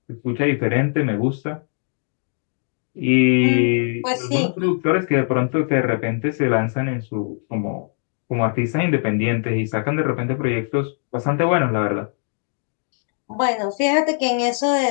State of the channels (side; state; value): right; silent; 59 dB below the other